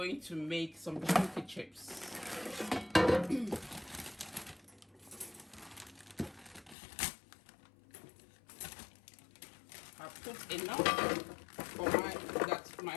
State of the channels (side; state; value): right; drops out; at 6.8 s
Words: to make some chunky chips. I put enough for that